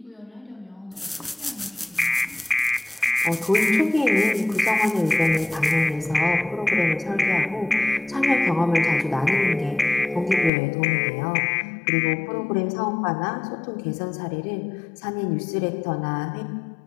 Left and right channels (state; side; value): drops out; right; at 10.5 s